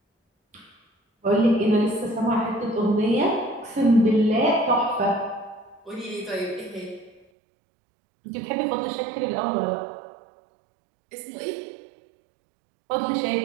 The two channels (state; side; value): drops out; left; at 7.2 s